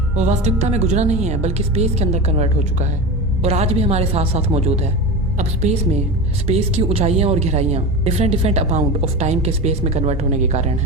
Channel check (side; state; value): both; normal; correlation 0.26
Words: वो वास्तविकता में गुजरा नहीं है, बल्कि स्पेस के अंदर कन्वर्ट हो चुका है, और आज भी हमारे साथ साथ मौजूद है। अब स्पेस की ऊंचाइयां और गहराइयां डिफरेंट अमाउंट ऑफ टाइम के स्पेस में कन्वर्ट होने के कारण